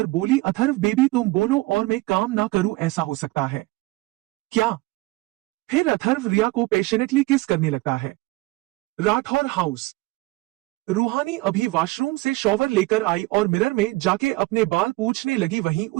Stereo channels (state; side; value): quieter; left; 21.4 dB